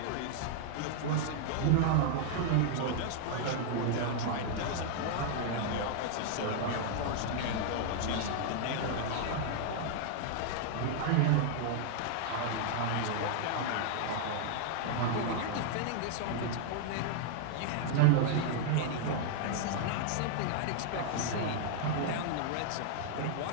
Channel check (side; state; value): both; different; correlation -0.01